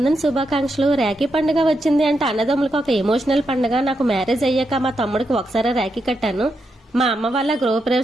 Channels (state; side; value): normal; both; correlation 0.83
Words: శుభాకాంక్షలు. రాఖీ పండుగ వచ్చింది అంటే అన్నదమ్ములకు ఒక ఎమోషనల్ పండుగ. నాకు మ్యారేజ్ అయ్యాక మా తమ్ముడికి ఒకసారి రాఖీ కట్టాను. మా అమ్మ వాళ్ళ